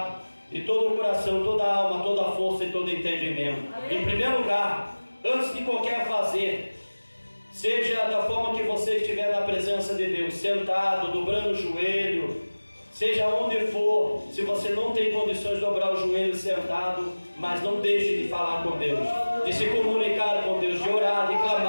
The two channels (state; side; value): inverted; both; correlation -1.00